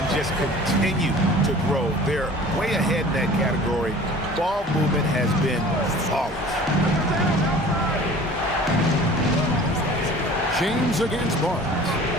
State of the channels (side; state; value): both; normal; correlation 0.45